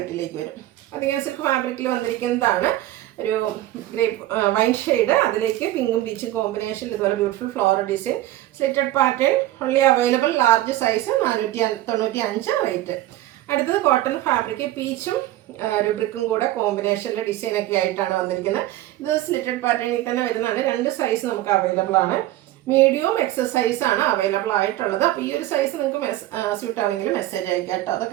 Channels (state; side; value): quieter; left; 15.2 dB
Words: വരും. അധികം സിൽക്ക് ഫാബ്രിക്കിൽ വന്നിരിക്കുന്നതാണ്. ഒരു ഗ്രേപ്പ് വൈൻ ഷെയ്ഡ്. അതിലേക്ക് പിങ്കും പീച്ചും കോമ്പിനേഷനിൽ ഇതുപോലെ beautiful floral design. Slitted pattern only available. Large size 495 rate. അടുത്തത് കോട്ടൺ ഫാബ്രിക് പീച്ചും ഒരു ബ്രിക്കും കൂടെ കോമ്പിനേഷനിലെ ഡിസൈനൊക്കെ ആയിട്ടാണ് വന്നിരിക്കുന്നത്. ഇത് സ്ലിറ്റഡ് പാറ്റേണിൽ തന്നെ വരുന്നതാണ്. 2 സൈസ് നമുക്ക് അവൈലബിൾ ആണ്. മീഡിയവും എക്സൽ സൈസാണ് അവൈലബിൾ ആയിട്ടുള്ളത്. അപ്പോൾ ഈ ഒരു സൈസ് നിങ്ങൾക്ക് സ്യൂട്ട് ആവുമെങ്കിൽ മെസ്സേജ് അയക്കാം കേട്ടോ.